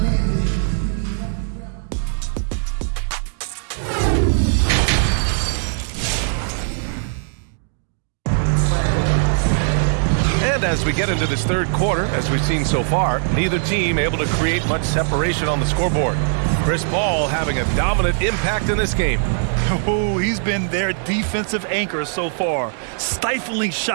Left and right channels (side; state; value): left; silent; digital silence